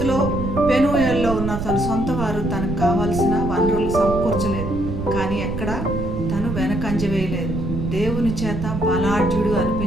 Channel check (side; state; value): right; noise; rumble, 5 dB below the sound